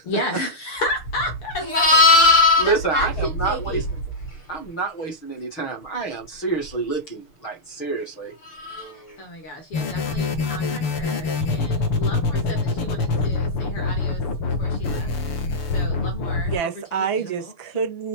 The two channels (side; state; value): right; late; 6.7 ms